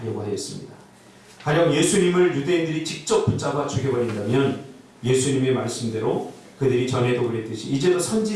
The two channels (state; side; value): identical; both; correlation 1.00